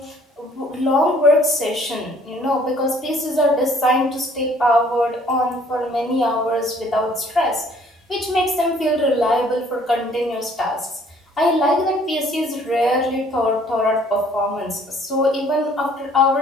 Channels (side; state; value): both; normal; correlation 0.59